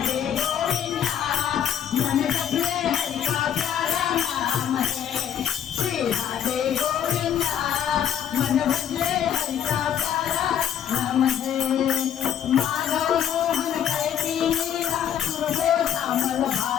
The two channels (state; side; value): quieter; right; 9.5 dB